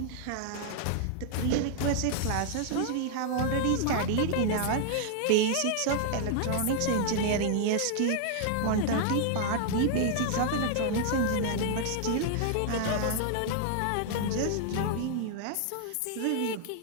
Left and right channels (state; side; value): different; both; correlation 0.00